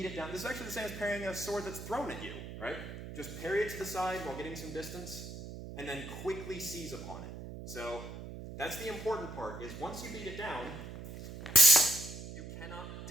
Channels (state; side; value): noise; right; hum, 10 dB below the sound